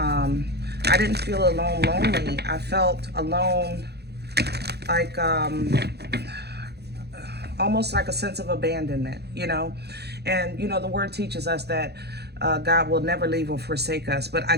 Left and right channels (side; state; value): left; late; 0.48 ms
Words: didn't feel alone lonely. I felt alone like almost like a sense of abandonment, you know. And, you know, the word teaches us that God will never leave or forsake us, but I